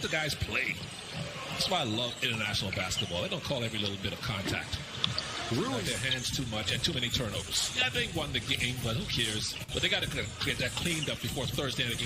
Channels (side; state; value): both; identical; correlation 1.00